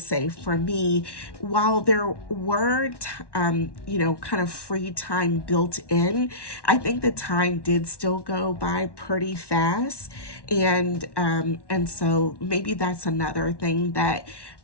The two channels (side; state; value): right; late; 1.1 ms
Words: for me, while there were, kind of free time built in, I think the time did still go by pretty fast. And so maybe that's another thing that